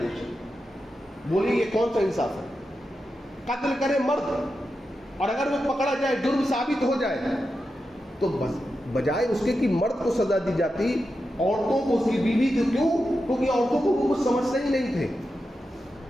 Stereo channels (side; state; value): both; normal; correlation 0.89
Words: بولیے یہ کون سا انصاف ہے؟ قتل کرے مرد اور اگر وہ پکڑا جائے، جرم ثابت ہو جائے، تو بس بجائے اس کے کہ مرد کو سزا دی جاتی، عورتوں کو، اس کی بیوی کو۔ کیوں؟ کیونکہ عورتوں کو وہ کچھ سمجھتے ہی نہیں تھے۔